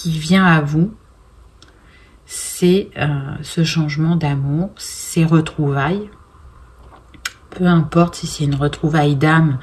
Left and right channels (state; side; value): identical; both; correlation 1.00